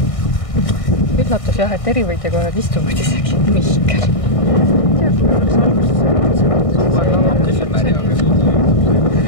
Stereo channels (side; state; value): right; late; 1.6 ms